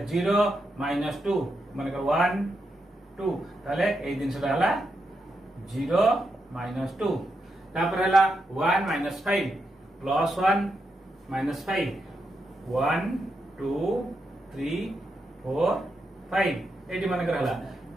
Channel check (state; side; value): normal; both; correlation 0.84